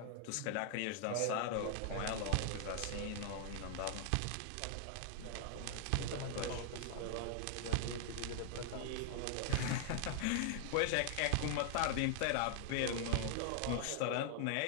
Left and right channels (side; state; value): both; different; correlation 0.00